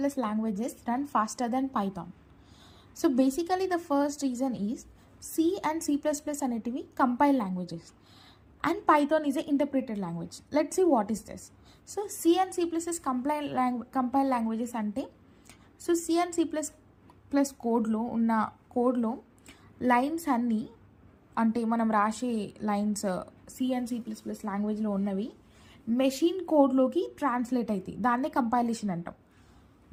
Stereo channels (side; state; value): both; identical; correlation 1.00